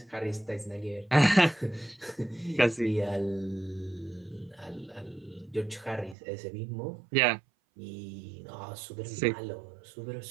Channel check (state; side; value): drops out; left; at 6.2 s